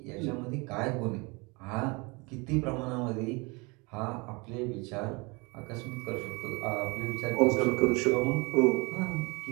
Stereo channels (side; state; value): left; quieter; 27.8 dB